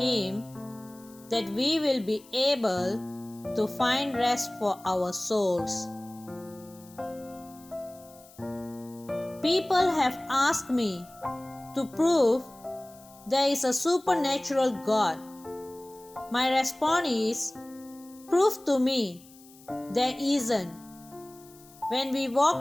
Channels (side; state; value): left; noise; hiss, 24 dB below the sound